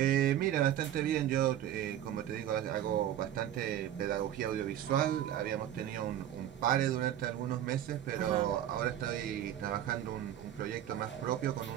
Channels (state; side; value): quieter; left; 11.4 dB